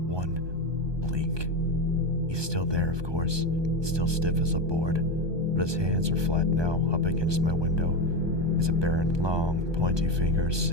blink. He's still there, of course, still stiff as a board, but his hands are flat now up against my window. His apparent long, pointy fingers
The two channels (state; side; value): late; left; 1.2 ms